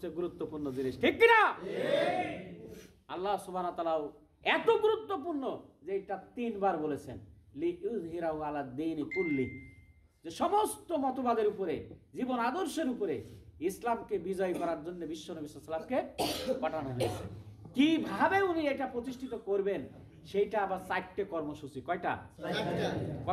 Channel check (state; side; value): identical; both; correlation 1.00